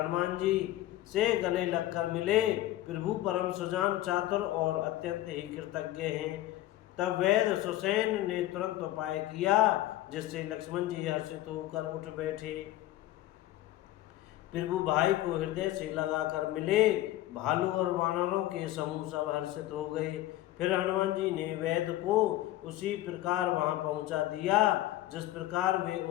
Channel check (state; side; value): quieter; right; 15.1 dB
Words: जी से गले लगकर मिले। प्रभु परम सुजान, चातुर और अत्यंत ही कृतज्ञ हैं। तब वैद्य सुसैन ने तुरंत उपाय किया, जिससे लक्ष्मण जी हर्षित होकर उठ बैठे। प्रभु भाई को हृदय से लगाकर मिले। भालू और वानरों के समूह सब हर्षित हो गए। फिर हनुमान जी ने वैद्य को उसी प्रकार वहां पहुंचा दिया जिस प्रकार वे